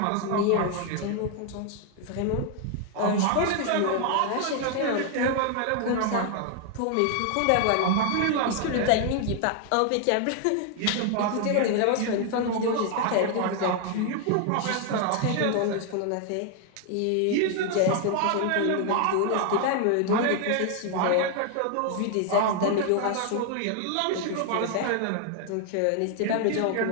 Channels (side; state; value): both; different; correlation 0.00